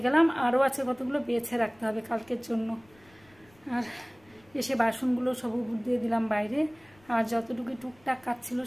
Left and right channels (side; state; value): left; noise; rumble, 29 dB below the sound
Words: গেলাম, আরও আছে কতগুলো বেছে রাখতে হবে কালকের জন্য। আর এসে বাসনগুলো সব উপর দিয়ে দিলাম বাইরে, আর যতটুকু টুকটাক কাজ ছিল